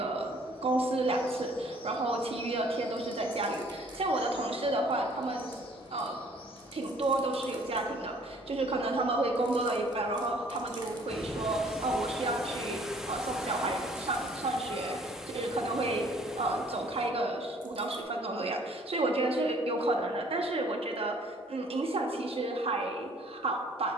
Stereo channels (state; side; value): normal; both; correlation 0.57